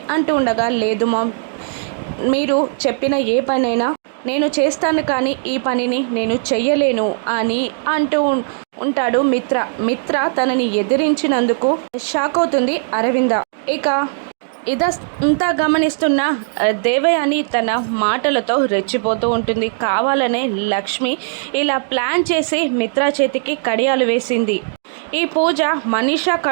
అంటూ ఉండగా, లేదు మామ్, మీరు చెప్పిన ఏ పనైనా నేను చేస్తాను, కానీ ఈ పనిని నేను చెయ్యలేను అని అంటూ ఉంటాడు మిత్ర. మిత్ర తనని ఎదిరించినందుకు షాక్ అవుతుంది అరవింద. ఇక ఇదంతా గమనిస్తున్న దేవయాని తన మాటలతో రెచ్చిపోతూ ఉంటుంది. కావాలనే లక్ష్మి ఇలా ప్లాన్ చేసి మిత్ర చేతికి కడియాలు వేసింది. ఈ పూజ మనీషా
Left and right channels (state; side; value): silent; left; digital silence